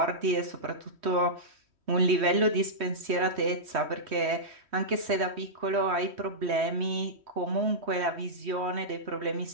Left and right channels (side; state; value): left; late; 3.1 ms